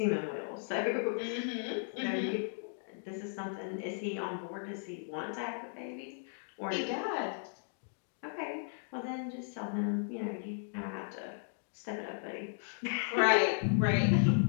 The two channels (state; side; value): silent; right; digital silence